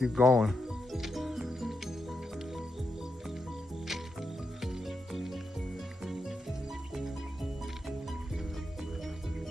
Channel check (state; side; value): normal; both; correlation 0.85